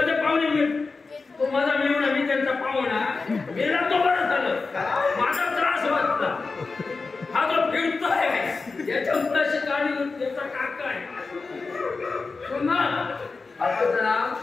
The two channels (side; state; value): right; quieter; 4.1 dB